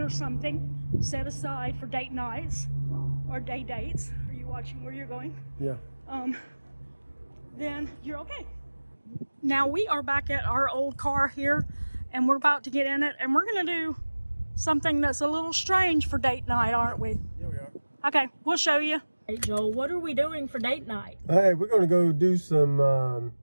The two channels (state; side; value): inverted; both; correlation -1.00